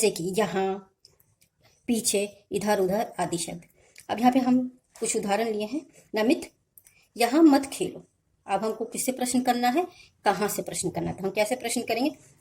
कि यहाँ, पीछे, इधर उधर आदि शब्द। अब यहाँ पे हम कुछ उदाहरण लिए हैं। नमित, यहाँ मत खेलो। अब हमको किससे प्रश्न करना है, कहाँ से प्रश्न करना है। तो हम कैसे प्रश्न करेंगे,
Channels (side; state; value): both; identical; correlation 1.00